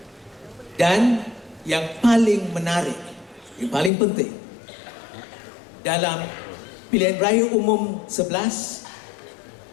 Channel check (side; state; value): right; drops out; at 3.9 s